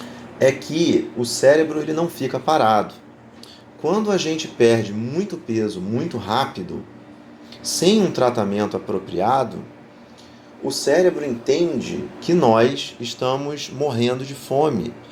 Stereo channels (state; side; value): identical; both; correlation 1.00